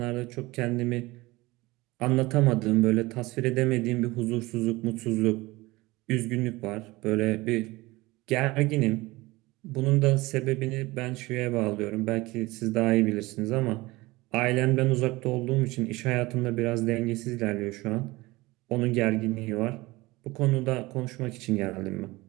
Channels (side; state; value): left; quieter; 20.9 dB